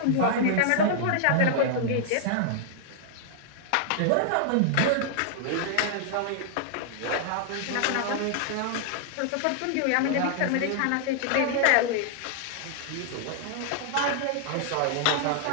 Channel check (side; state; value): both; different; correlation -0.01